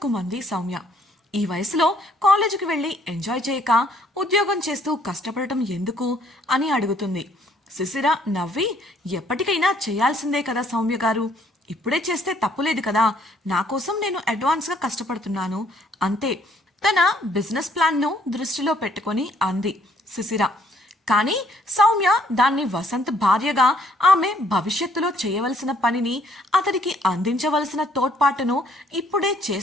సౌమ్య. ఈ వయసులో కాలేజీకి వెళ్లి ఎంజాయ్ చేయక ఉద్యోగం చేస్తూ కష్టపడటం ఎందుకు అని అడుగుతుంది. శిశిర నవ్వి, ఎప్పటికైనా చేయాల్సిందే కదా సౌమ్య గారు, ఇప్పుడే చేస్తే తప్పులేదు కదా, నా కోసం నేను అడ్వాన్స్గా కష్టపడుతున్నాను అంతే. తన బిజినెస్ ప్లాన్ను దృష్టిలో పెట్టుకొని అంది శిశిర. కానీ సౌమ్య దాన్ని వసంత్ భార్యగా ఆమె భవిష్యత్తులో చేయవలసిన పనిని, అతడికి అందించవలసిన తోడ్పాటును ఇప్పుడే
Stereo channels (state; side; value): normal; both; correlation 0.64